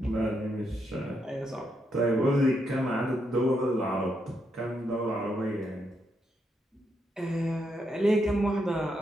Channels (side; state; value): both; normal; correlation 0.80